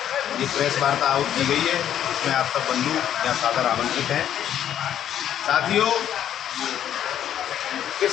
ये प्रेस वार्ता आयोजित की गई है। इसमें आप सब बंधु या सादर आमंत्रित हैं। साथियों,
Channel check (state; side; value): quieter; right; 10.4 dB